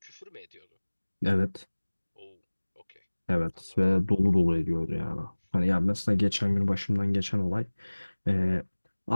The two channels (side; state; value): both; inverted; correlation -1.00